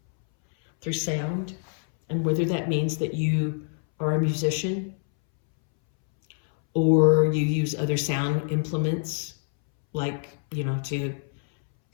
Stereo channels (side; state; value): right; silent; 61 dB below the other